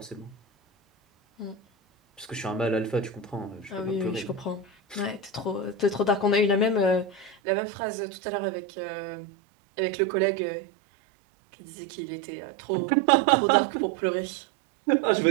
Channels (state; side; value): drops out; left; at 7.4 s